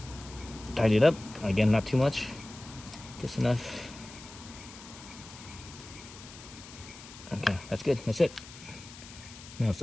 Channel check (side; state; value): left; noise; hiss, 16 dB below the sound